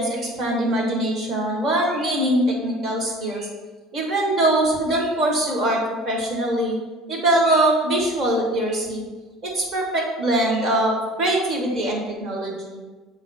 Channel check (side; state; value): both; normal; correlation 0.43